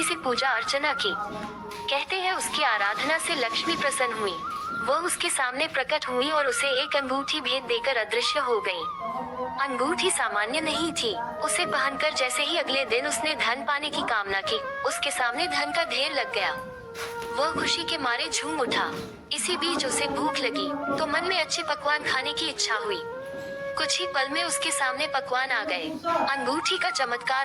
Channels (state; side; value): identical; both; correlation 1.00